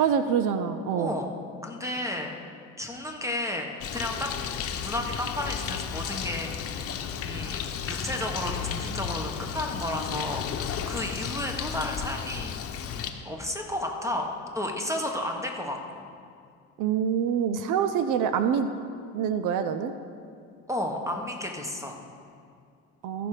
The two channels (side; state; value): both; normal; correlation 0.13